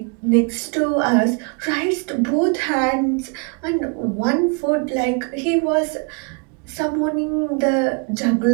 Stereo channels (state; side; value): quieter; left; 34.7 dB